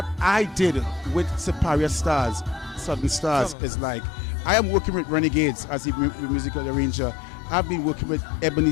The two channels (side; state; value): right; drops out; at 3.6 s